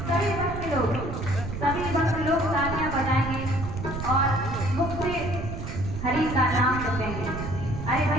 सभी भक्त लोग तालियां बजाएंगे और मुख से हरि का नाम जपेंगे। अरे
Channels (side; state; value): right; noise; rumble, 6 dB below the sound